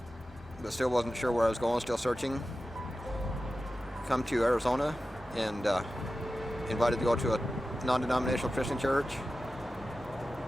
but still wasn't sure where I was going, still searching. Come to Arizona and invited to go to a non-denominational Christian church.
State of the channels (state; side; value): normal; both; correlation 0.94